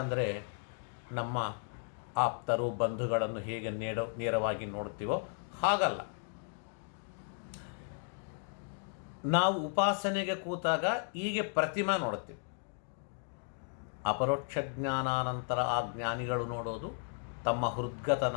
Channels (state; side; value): silent; right; 54 dB below the other